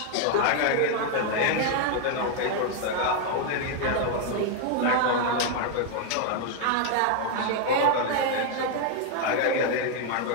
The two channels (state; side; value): different; both; correlation 0.00